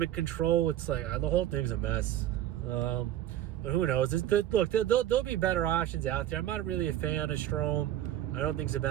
in control. It's like the whole thing's a mess. But who knows? Look, there'll be better options out there. I'm not really a fan of Strome. I don't think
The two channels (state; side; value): quieter; left; 12.4 dB